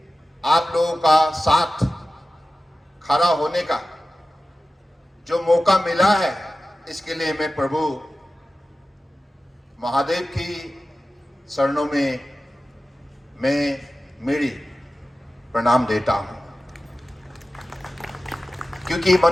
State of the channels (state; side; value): normal; both; correlation 0.95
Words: आप लोगों का साथ खड़ा होने का जो मौका मिला है, इसके लिए मैं प्रभु महादेव की शरणों में मैं मेरी प्रणाम देता हूं, क्योंकि